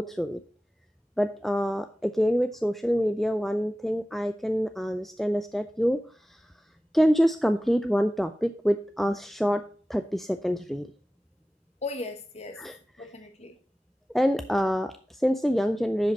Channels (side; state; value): both; normal; correlation 0.96